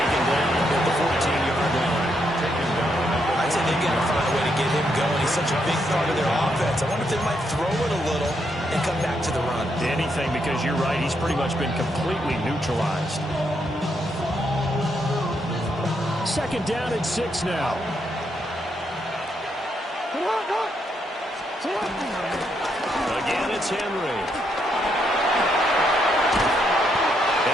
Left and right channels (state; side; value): normal; both; correlation 0.77